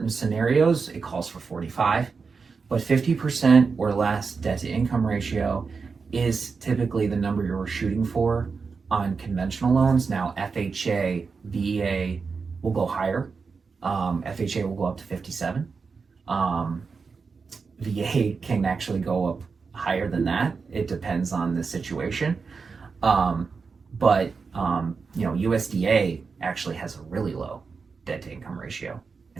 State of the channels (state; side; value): quieter; left; 5.0 dB